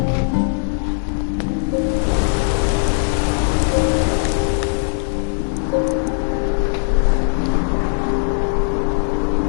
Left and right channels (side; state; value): right; silent; digital silence